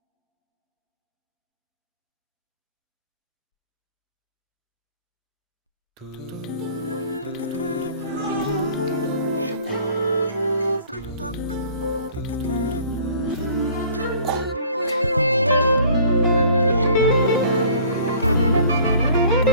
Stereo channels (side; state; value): both; inverted; correlation -0.52